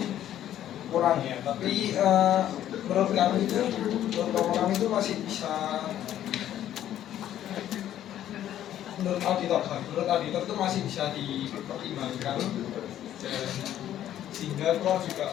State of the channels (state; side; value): quieter; right; 11.6 dB